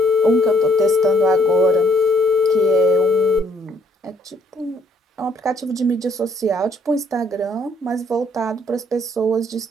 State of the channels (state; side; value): normal; both; correlation 0.66